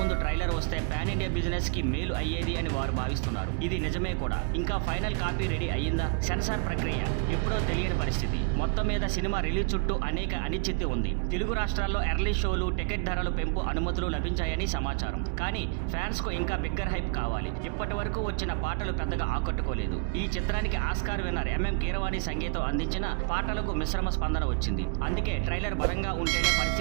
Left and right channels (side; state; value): left; quieter; 35.0 dB